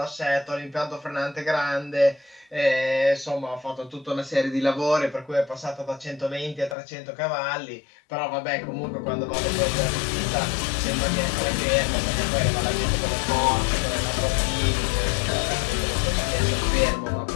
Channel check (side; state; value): right; drops out; at 6.8 s